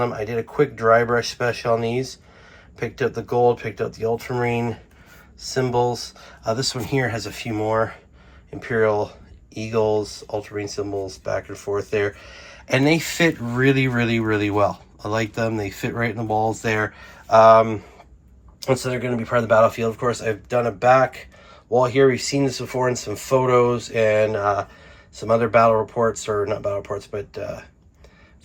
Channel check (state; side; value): identical; both; correlation 1.00